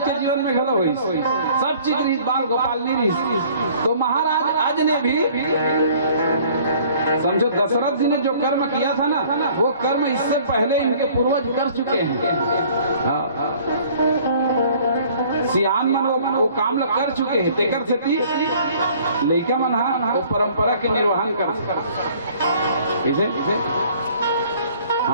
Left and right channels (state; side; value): inverted; both; correlation -0.54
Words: जीवन में घलो हुई, सब चीज रही, बाल गोपाल नहीं रही। तो महाराज आज ने भी समझो दशरथ जी ने जो कर्म किया था ना, वो कर्म इससे पहले इनके पूर्वज कर चुके हैं। सियान मन वो काम कर चुके हैं। तेकर से लड़का मन वो परंपरा के निर्वहन कर